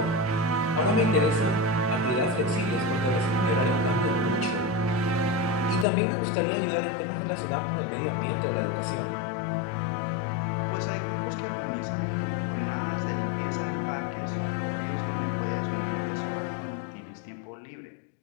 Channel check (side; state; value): right; drops out; at 5.9 s